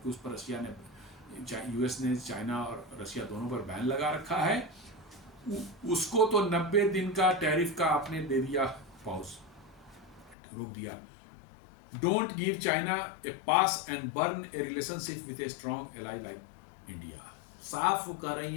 उस पर रसिया ने, यूएस ने चाइना और रसिया दोनों पर बैन लगा रखा है, उसको तो 90 दिन का टैरिफ का आपने दे दिया पाउज, रोक दिया। Don't give China A pass and burn A relationship with a strong ally like India. साफ वो कह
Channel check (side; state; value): right; drops out; at 10.4 s